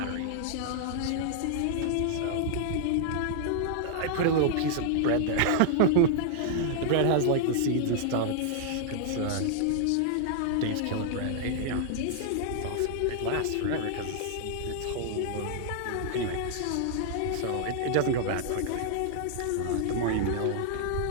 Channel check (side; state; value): both; different; correlation -0.01